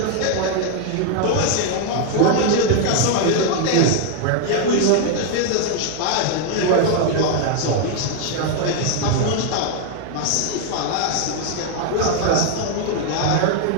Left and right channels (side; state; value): both; different; correlation 0.00